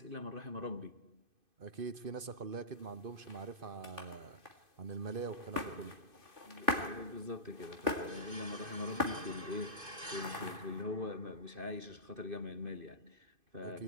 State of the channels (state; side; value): late; left; 2.5 ms